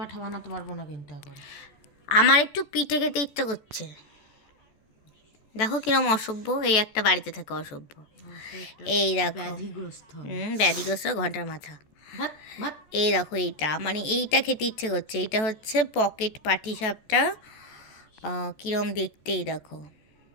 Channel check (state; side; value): late; right; 14 ms